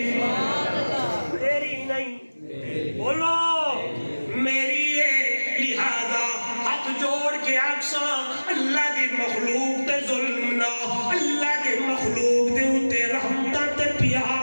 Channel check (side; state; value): both; inverted; correlation -1.00